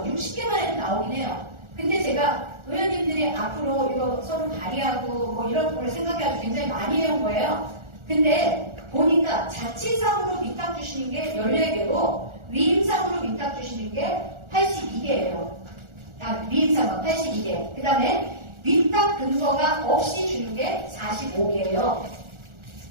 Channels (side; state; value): left; late; 1.4 ms